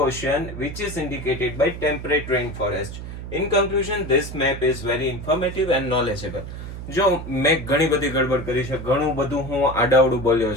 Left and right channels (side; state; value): right; noise; hum, 9 dB below the sound